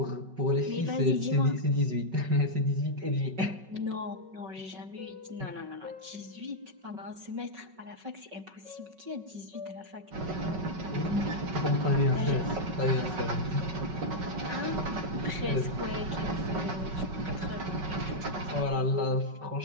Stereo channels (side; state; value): left; late; 5.3 ms